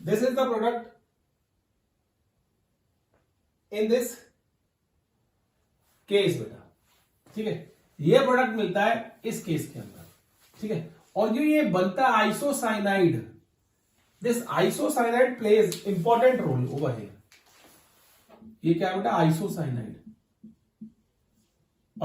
This is the product in this case बेटा, ठीक है। ये प्रोडक्ट मिलता है इस केस के अंदर, ठीक है। और जो ये बनता है isocyanide, this isocyanide pledge important roll over here. ये क्या है बेटा, आइसोसाइनाइड,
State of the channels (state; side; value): identical; both; correlation 1.00